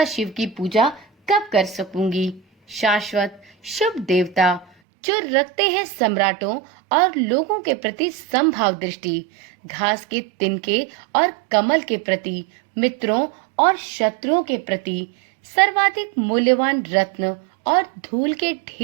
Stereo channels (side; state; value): left; drops out; at 4.7 s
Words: शिव की पूजा कब कर सकूंगी। शाश्वत शुभ देवता, जो रखते हैं सम्राटों और लोगों के प्रति समभाव दृष्टि, घास के तिनके और कमल के प्रति, मित्रों और शत्रुओं के प्रति, सर्वाधिक मूल्यवान रत्न और धूल के